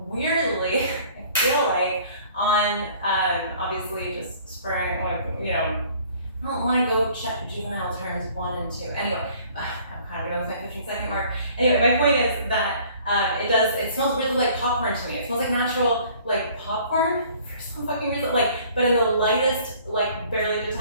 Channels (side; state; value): both; inverted; correlation -0.54